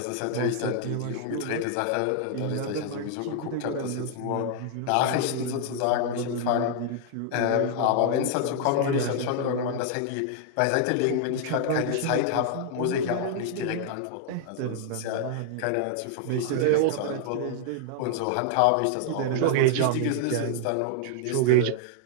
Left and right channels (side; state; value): both; different; correlation 0.00